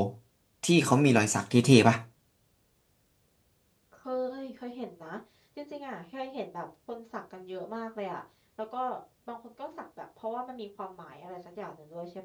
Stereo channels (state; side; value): identical; both; correlation 1.00